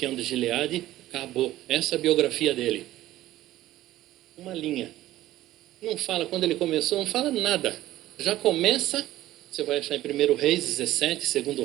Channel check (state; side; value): quieter; left; 14.9 dB